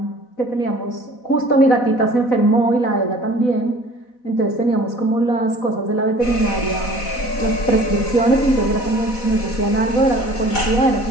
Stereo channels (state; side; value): late; right; 4.1 ms